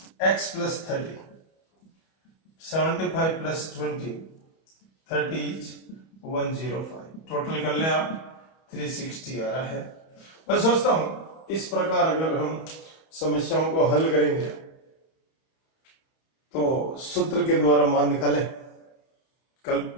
x plus 30 75 plus 20 30 is 105। Total कर लें आप 360 आ रहा है। मैं सोचता हूं इस प्रकार अगर हम समस्याओं को हल करेंगे तो सूत्र के द्वारा मान निकालें। कल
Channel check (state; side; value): late; right; 31 ms